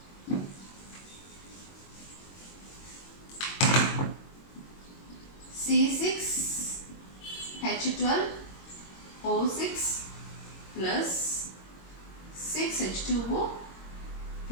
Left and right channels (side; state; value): right; late; 22 ms